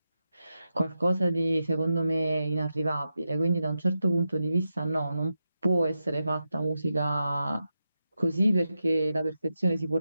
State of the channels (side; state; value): both; inverted; correlation -0.89